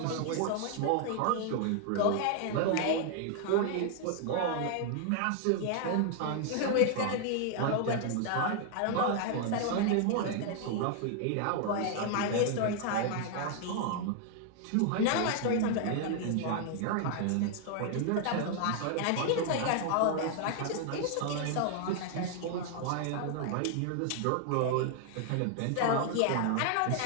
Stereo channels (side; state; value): both; different; correlation 0.00